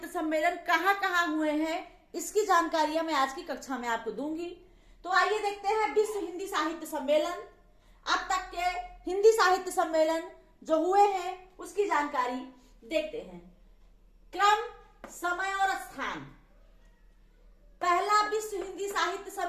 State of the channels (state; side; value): identical; both; correlation 1.00